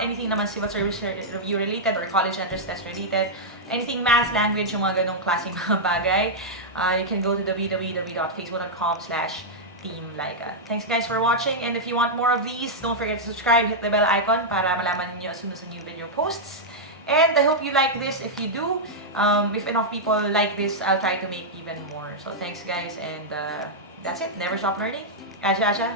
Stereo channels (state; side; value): normal; both; correlation -0.07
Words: naman civil service review related or college entrance test related, anything math, language, yung mga ganong klaseng mga bagay, you can go to www.facebook.com/teamlaika. Thanks guys for watching, and if you want more of these, don't forget to subscribe, hit the bell icon para malaman niyo as soon as a new video posts. And I hope you like this. If you do, if enough people like this, I'll try to make even more. So thanks guys, and that's it. Never stop learning. Aja.